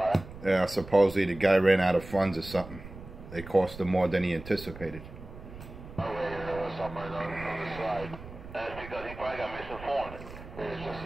Yeah, supposedly the guy ran out of funds or something. They cost him more than he anticipated. Oh, wait, there was somewhere on the side. That's because he probably got misinformed. It's just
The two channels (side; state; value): right; noise; rumble, 14 dB below the sound